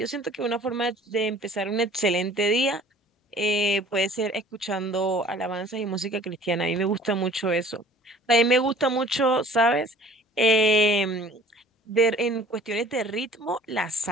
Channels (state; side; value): normal; both; correlation 0.50